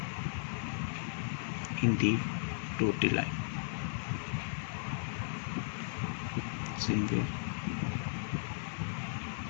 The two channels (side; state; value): right; silent; digital silence